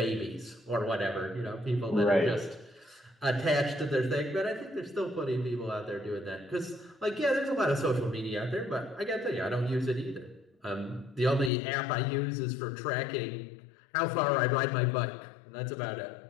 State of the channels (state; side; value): drops out; right; at 11.5 s